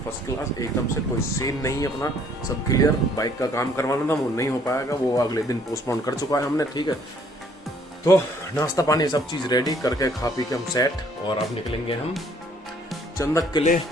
फर्स्ट क्लास एकदम से। कोई सीन नहीं है, अपना सब क्लियर। बाइक का काम करवाना था, वो नहीं हो पाएगा, वो अगले दिन पोस्टपोन कर चुका है हमने, ठीक है। तो नाश्ता पानी सब चीज़ रेडी करके खा पी के हम सेट, और अब निकलेंगे हम चंदक के लिए।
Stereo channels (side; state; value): both; normal; correlation 0.62